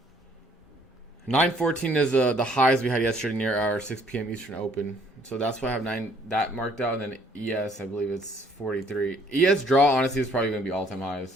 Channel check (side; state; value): both; normal; correlation 0.62